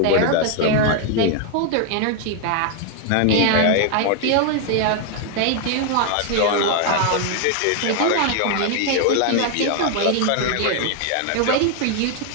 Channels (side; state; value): both; different; correlation 0.00